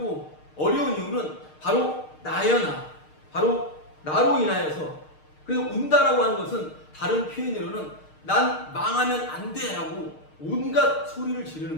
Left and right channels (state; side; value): late; right; 6.5 ms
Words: 어려운 이유는 바로 나여 나 바로 나로 인하여서 그래서 운다라고 하는 것은 다른 표현으로는 난 망하면 안 돼 라고 온갖 소리를 지르는